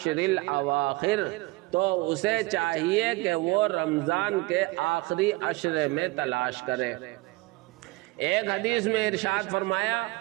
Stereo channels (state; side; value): quieter; left; 22.1 dB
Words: الْأَوَاخِرِ، تو اسے چاہیے کہ وہ رمضان کے آخری عشرے میں تلاش کرے۔ ایک حدیث میں ارشاد فرمایا،